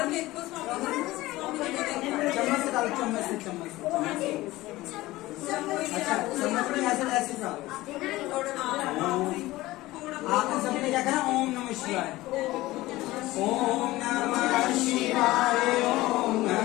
चम्मच से डालो, चम्मच से अच्छा चम्मच में ऐसे डालो। आपने सबने क्या कहा, ओम नमः शिवाय, ओम नमः शिवाय, ओम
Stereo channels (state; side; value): quieter; right; 18.2 dB